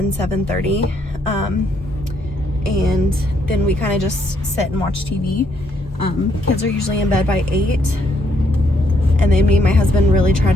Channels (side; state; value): both; normal; correlation 0.72